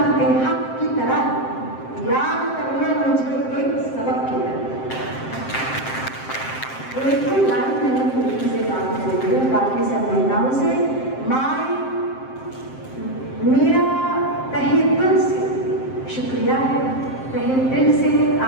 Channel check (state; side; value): late; right; 7.6 ms